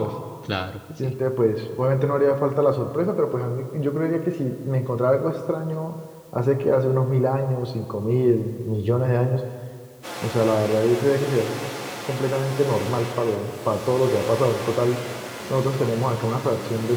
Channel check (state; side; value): identical; both; correlation 1.00